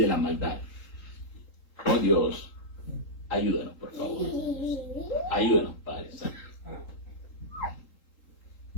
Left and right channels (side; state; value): right; late; 3.8 ms